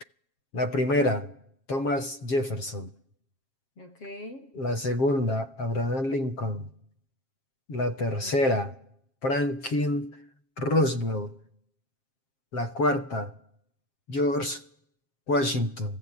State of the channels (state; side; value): late; right; 7.5 ms